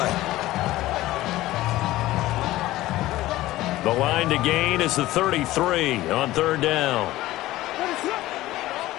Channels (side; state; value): right; quieter; 16.6 dB